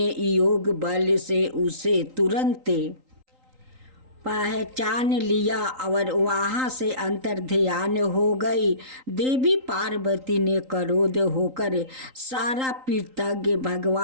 योग बल से उसे तुरंत पहचान लिया और वहाँ से अंतर्ध्यान हो गई। देवी पार्वती ने क्रोध होकर सारा कृतज्ञ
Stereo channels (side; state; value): left; late; 3.8 ms